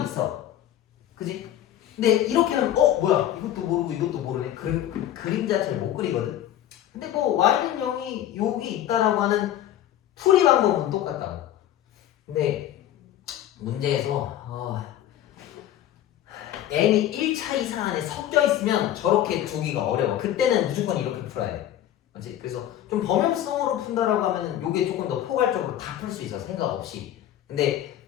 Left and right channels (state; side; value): quieter; right; 11.9 dB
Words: 있어. 그지? 근데 이렇게 하면 뭐야 이것도 모르고 이것도 모르네. 그림 자체를 못 그리거든. 근데 뭐 y는 0이 여기 있다라고 하는 풀이 방법은 똑같다고. 근데 문제에서 n이 1차 이상 안에 섞여 있으면 저렇게 두기가 어려워. 그때는 무조건 이렇게 풀어야 돼. 맞지? 그래서 좀 범용성으로 푼다라고 하면은 요게 조금 더 포괄적으로 다 풀 수 있어. 생각 없이. 근데